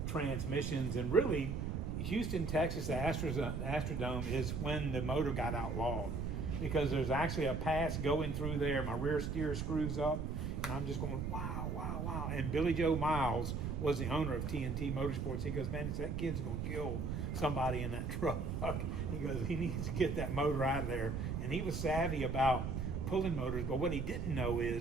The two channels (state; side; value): noise; right; rumble, 2 dB below the sound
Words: transmissions, and really, Houston, Texas, the Astrodome is when the motor got outlawed, because there's actually a pass going through there. My rear steer screws up, and I'm just going, wow, wow, wow. And Billy Joe Miles was the owner of TNT Motorsports. He goes, man, that kid's going to kill somebody in that truck. He goes, he needs to get that motor out of there. And he was savvy about pulling motors, but what he didn't know